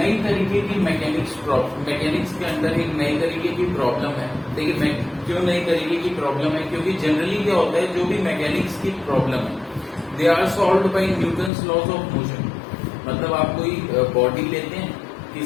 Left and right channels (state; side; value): drops out; right; at 11.5 s